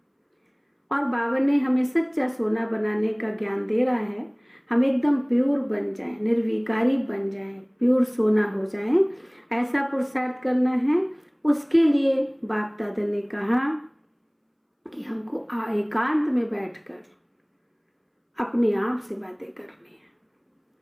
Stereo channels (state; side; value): identical; both; correlation 1.00